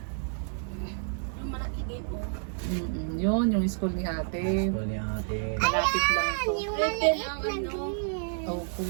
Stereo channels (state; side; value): silent; left; digital silence